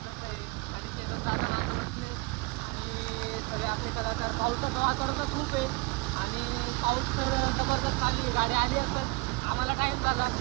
आणि पावसाचं वातावरण खूप आहे आणि पाऊस तर जबरदस्त आली, गाडी आली असेल, आम्हाला टाईम झाला.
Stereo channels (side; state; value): left; quieter; 26.8 dB